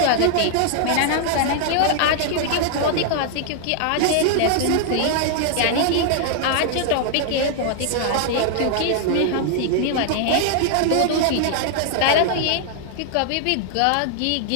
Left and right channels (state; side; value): different; both; correlation -0.01